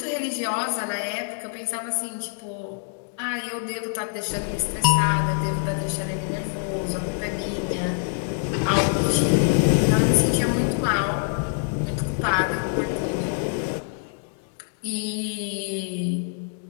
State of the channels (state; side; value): silent; right; digital silence